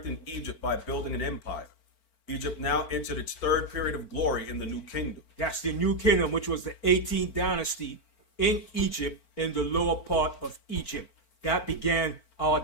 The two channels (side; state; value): right; late; 4.4 ms